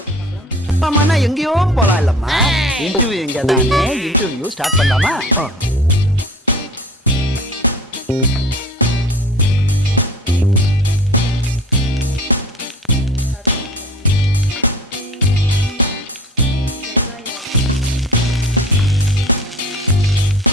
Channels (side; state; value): both; normal; correlation 0.42